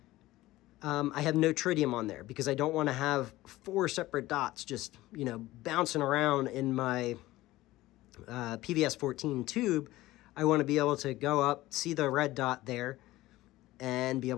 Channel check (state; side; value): quieter; right; 17.3 dB